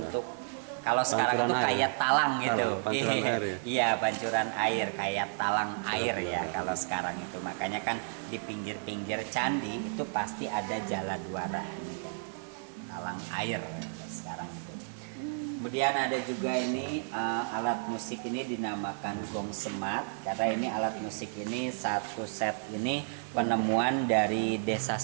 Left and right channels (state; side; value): silent; left; digital silence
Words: kalau sekarang itu kayak talang gitu. Iya, pancuran air kayak talang air ya kalau sekarang itu. Makanya kan di pinggir-pinggir candi itu pasti ada Jalan Duara. Talang air sekarang itu. Kemudian ada juga ini alat musik ini dinamakan gong semat, karena ini alat musik ini satu set ini penemuan dari Desa